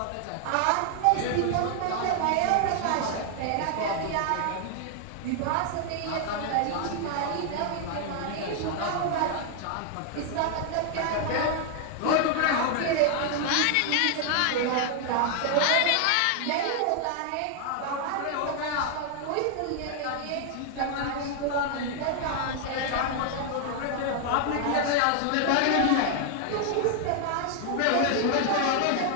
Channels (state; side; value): different; both; correlation 0.00